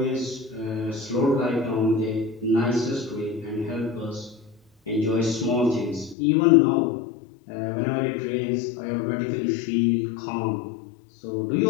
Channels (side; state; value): right; drops out; at 6.2 s